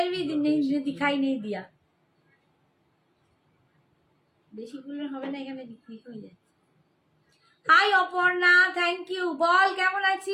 भी नहीं दिखाई नहीं दिया। বেশি গুলো হবে না, এখানে বিক্রি হয়ে যাচ্ছে। Hi Aparna, thank you. বল কেমন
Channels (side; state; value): both; identical; correlation 1.00